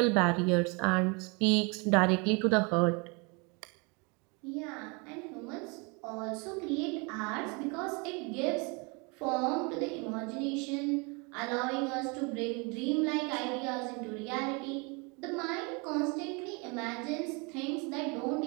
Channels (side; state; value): left; quieter; 30.7 dB